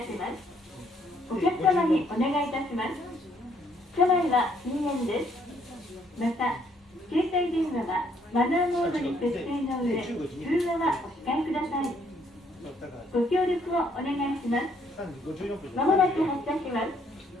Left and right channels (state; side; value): normal; both; correlation 0.67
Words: ます。お客様にお願いいたします。車内は禁煙です。また携帯電話はマナーモードに設定の上、通話はお控えください。ご協力をお願いします。まもなく発車します。